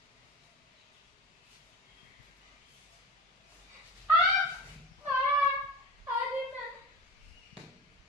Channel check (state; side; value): normal; both; correlation 0.31